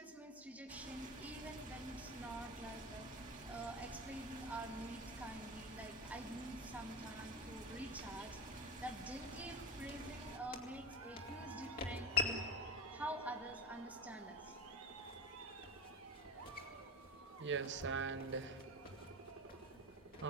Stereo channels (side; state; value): both; normal; correlation 0.22